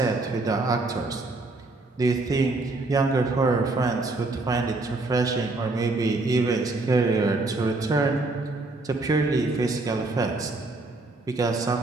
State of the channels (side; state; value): left; quieter; 3.2 dB